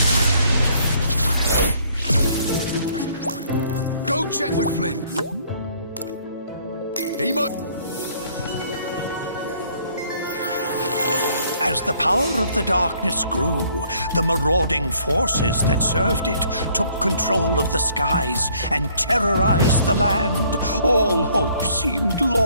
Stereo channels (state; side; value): inverted; both; correlation -0.62